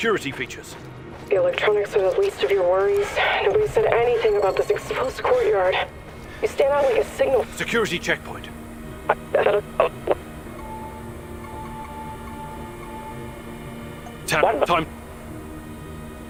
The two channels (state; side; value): identical; both; correlation 1.00